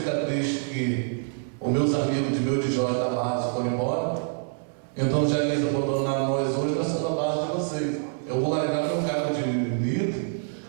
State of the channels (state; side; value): silent; left; digital silence